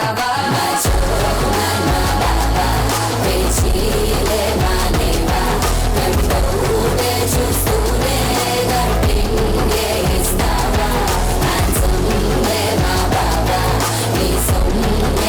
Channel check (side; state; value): both; identical; correlation 1.00